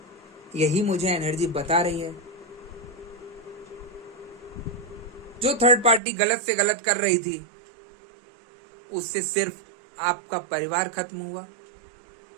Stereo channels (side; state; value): left; drops out; at 6.0 s